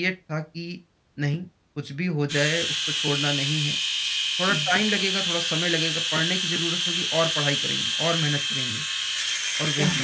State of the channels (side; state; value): both; identical; correlation 1.00